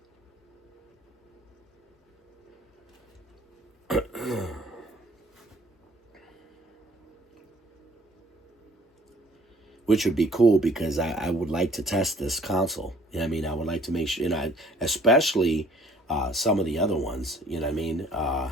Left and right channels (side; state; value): both; normal; correlation 0.57